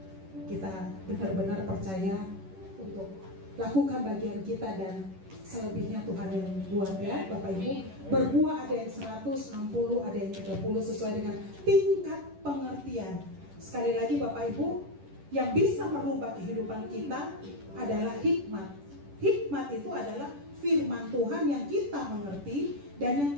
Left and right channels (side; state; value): left; late; 10 ms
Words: kita benar-benar percaya untuk lakukan bagian kita, dan selebihnya Tuhan yang buat ya Bapak Ibu. Berbuah ada yang 100, 60, ada yang 30 sesuai dengan tingkat pengertian. Sekali lagi Bapak Ibu, yang bisa merubah kehidupan kita adalah hikmat. Hikmat itu adalah firman Tuhan yang kita mengerti dan yang